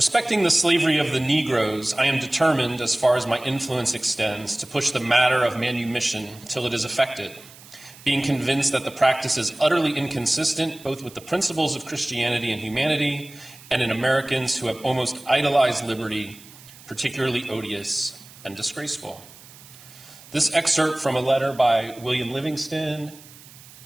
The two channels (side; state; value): right; noise; hiss, 21 dB below the sound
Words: the slavery of the Negroes, I am determined, as far as my influence extends, to push the matter of manumission till it is effected, being convinced that the practice is utterly inconsistent both with the principles of Christianity and humanity and in Americans who have almost idolized liberty, particularly odious and disgraceful. This excerpt from a letter by William Livingston